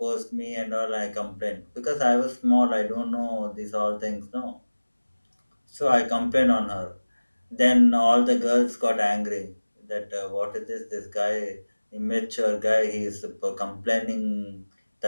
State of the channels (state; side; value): inverted; both; correlation -1.00